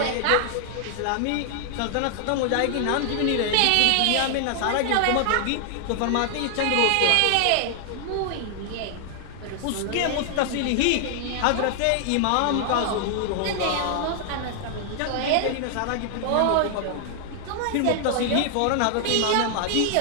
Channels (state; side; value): different; both; correlation 0.00